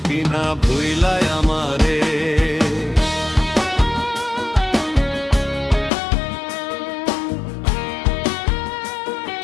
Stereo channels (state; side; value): drops out; right; at 5.9 s